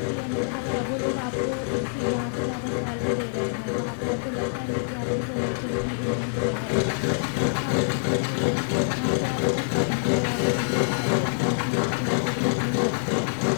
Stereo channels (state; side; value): silent; right; digital silence